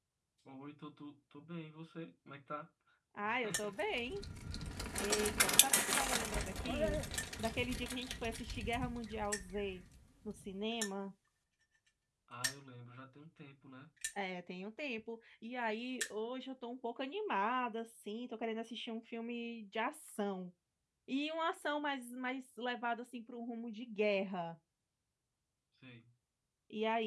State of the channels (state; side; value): identical; both; correlation 1.00